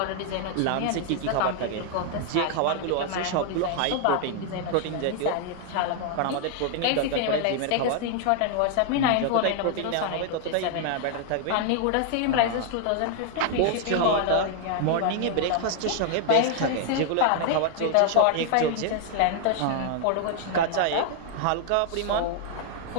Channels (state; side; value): different; both; correlation 0.00